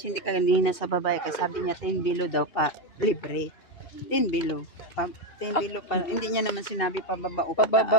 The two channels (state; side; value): late; right; 2.7 ms